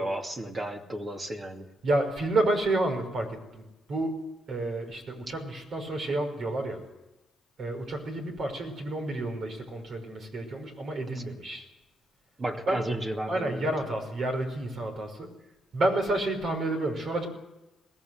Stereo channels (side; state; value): both; normal; correlation 0.80